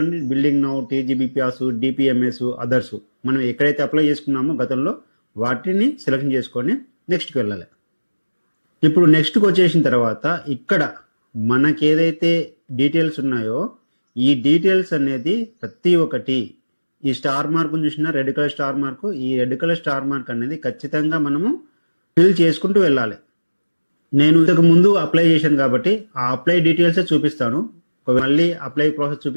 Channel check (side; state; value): both; inverted; correlation -1.00